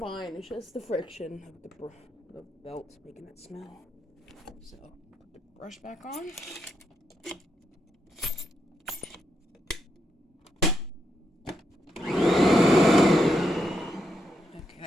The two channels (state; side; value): normal; both; correlation 0.80